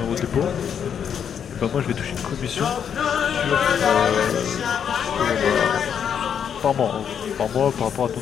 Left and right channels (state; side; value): quieter; right; 8.0 dB